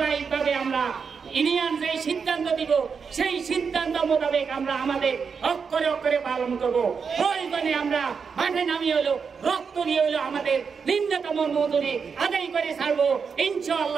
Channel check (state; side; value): quieter; left; 5.9 dB